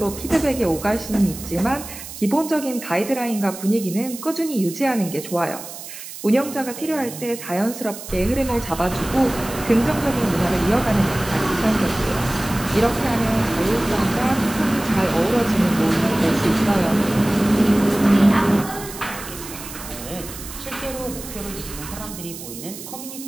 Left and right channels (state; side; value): noise; right; hiss, 12 dB below the sound